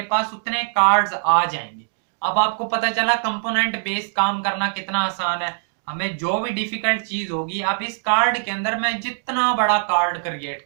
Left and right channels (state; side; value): silent; left; digital silence